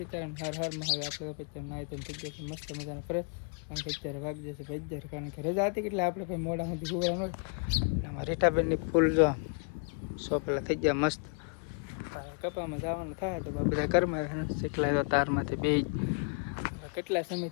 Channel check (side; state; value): right; quieter; 39.6 dB